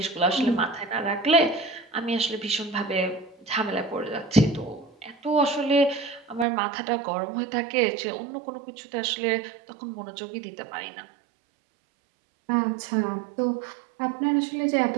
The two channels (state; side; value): drops out; left; at 6.5 s